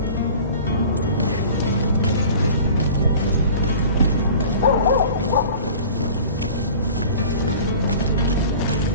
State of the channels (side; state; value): both; inverted; correlation -0.42